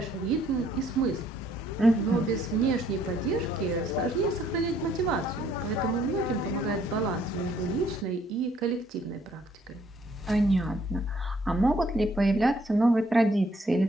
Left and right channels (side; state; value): both; normal; correlation 0.65